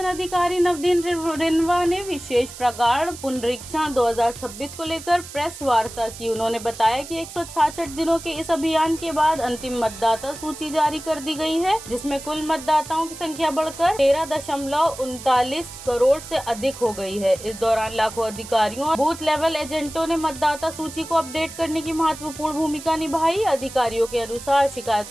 अधिकारी नवदीन रिनवा ने विशेष प्रगाढ़ पुनरीक्षण 2026 को लेकर प्रेस वार्ता की। उन्होंने बताया कि 166 दिनों के इस अभियान के बाद अंतिम मतदाता सूची जारी कर दी गई है, जिसमें कुल मतदाताओं की संख्या बढ़कर 13.39 करोड़ से अधिक हो गई है। इस दौरान लाखों अधिकारियों और बूथ लेवल एजेंटों ने मतदाता सूची को अपडेट करने की महत्वपूर्ण भूमिका निभाई। अधिकारियों के अनुसार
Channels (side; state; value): right; noise; hiss, 14 dB below the sound